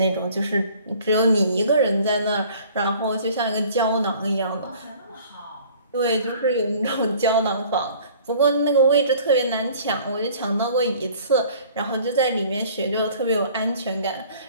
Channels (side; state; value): both; inverted; correlation -0.52